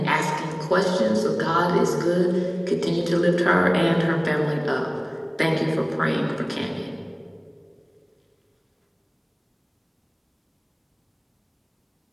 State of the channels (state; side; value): identical; both; correlation 1.00